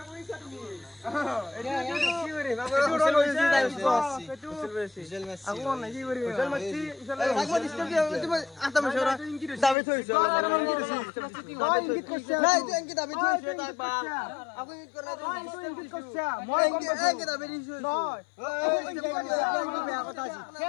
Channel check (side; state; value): right; drops out; at 9.8 s